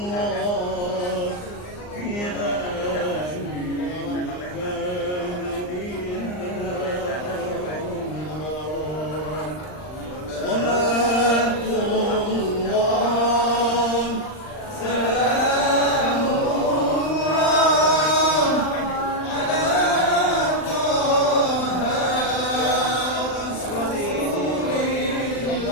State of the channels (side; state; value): right; late; 39 ms